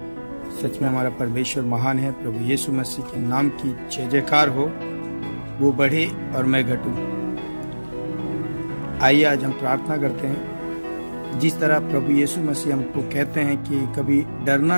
सच में हमारा परमेश्वर महान है। प्रभु यीशु मसीह के नाम की जय जयकार हो। वो बढ़े और मैं घटूं। आइए आज हम प्रार्थना करते हैं। जिस तरह प्रभु यीशु मसीह हमको कहते हैं कि कभी डरना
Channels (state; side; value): inverted; both; correlation -1.00